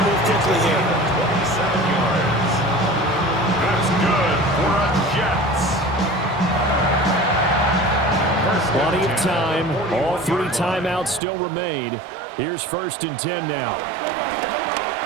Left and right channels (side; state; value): left; drops out; at 11.2 s